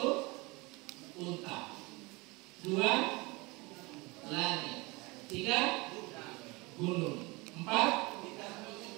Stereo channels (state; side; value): quieter; left; 24.8 dB